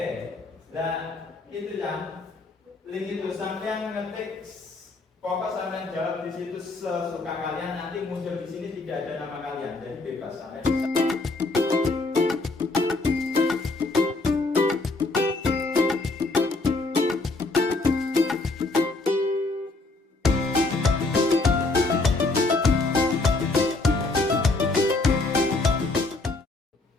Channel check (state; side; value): quieter; right; 3.4 dB